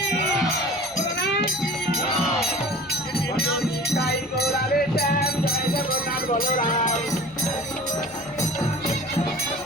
ভজনী তাই গৌরারে শ্যাম জয় জগন্নাথ বলরাম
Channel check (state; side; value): noise; right; hum, 28 dB below the sound